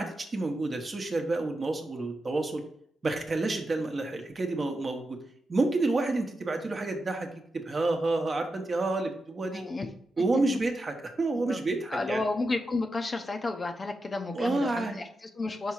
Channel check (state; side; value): normal; both; correlation 0.88